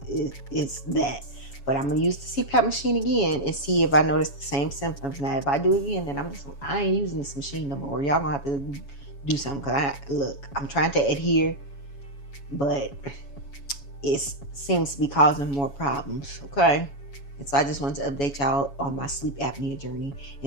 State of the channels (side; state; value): right; late; 7.2 ms